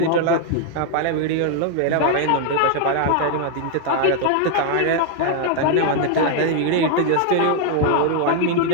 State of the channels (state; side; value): different; both; correlation 0.00